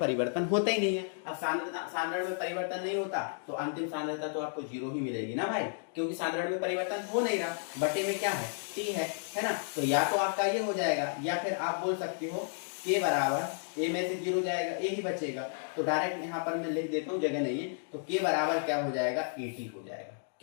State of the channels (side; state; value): right; silent; digital silence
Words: होता ही नहीं है। अब सांद्रण में परिवर्तन नहीं होता तो अंतिम सांद्रता तो आपको 0 ही मिलेगी ना भाई, क्योंकि सांद्रण में परिवर्तन हो नहीं रहा। बटे में क्या है? T है ना? तो या तो आपका ये हो जाएगा, या फिर आप बोल सकते हो K बराबर A में से 0 जाएगा, A ही बचेगा। तो डायरेक्ट यहाँ पर मैं लिख देता हूँ, जगह नहीं है, तो K बराबर क्या हो जाएगा? AT हो जाएगा।